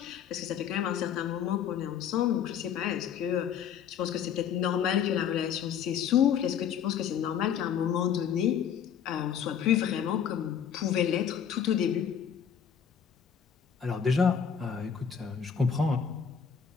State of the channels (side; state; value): right; quieter; 8.0 dB